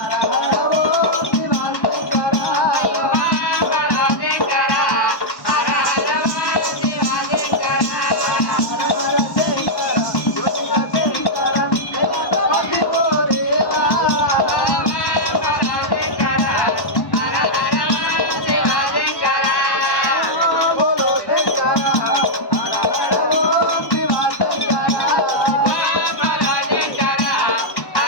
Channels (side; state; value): right; late; 1.1 ms